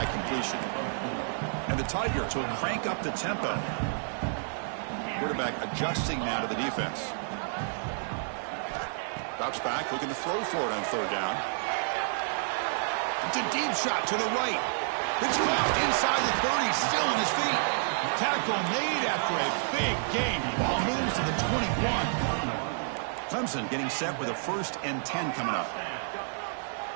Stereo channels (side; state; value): left; silent; digital silence